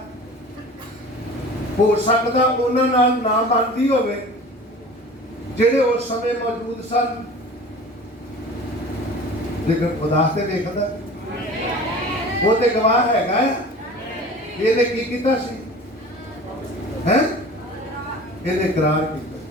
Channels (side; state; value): both; normal; correlation 0.41